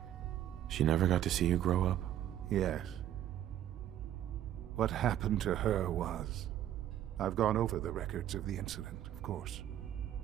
She never got to see you grow up? Yes. What happened to her was I've gone over the records of the incident, of course.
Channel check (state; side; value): quieter; left; 11.4 dB